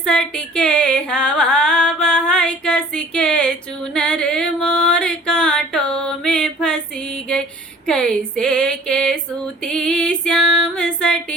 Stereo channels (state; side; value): normal; both; correlation 0.50